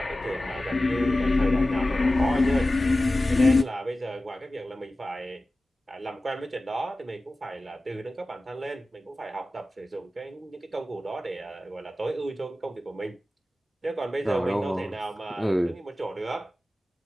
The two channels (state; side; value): normal; both; correlation 0.95